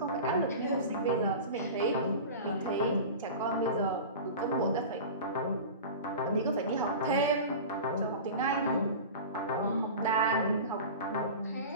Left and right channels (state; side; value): inverted; both; correlation -0.32